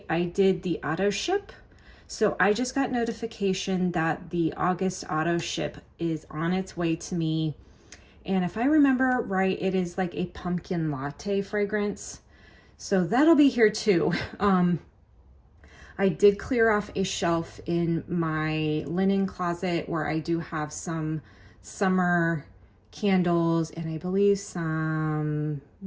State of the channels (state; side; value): identical; both; correlation 1.00